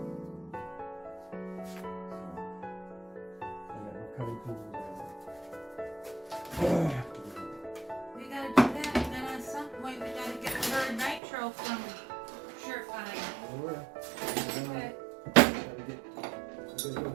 cutting tools. We gotta do that, and then at some point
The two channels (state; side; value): drops out; left; at 11.2 s